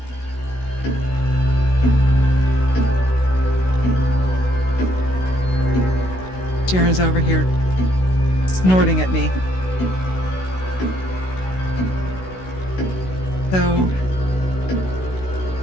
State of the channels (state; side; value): late; right; 16 ms